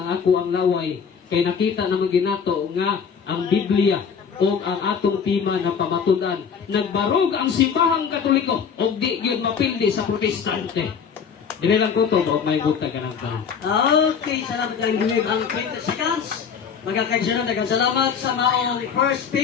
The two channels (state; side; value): quieter; right; 6.7 dB